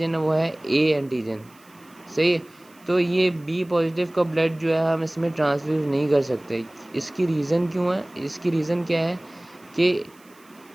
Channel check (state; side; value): noise; right; hiss, 29 dB below the sound